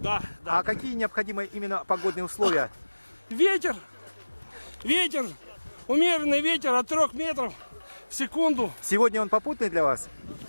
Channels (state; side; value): inverted; both; correlation -1.00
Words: да. А какие необходимы именно погодные условия? Ветер, умеренный ветер от 3 метров в секунду. Сегодня он попутный для вас?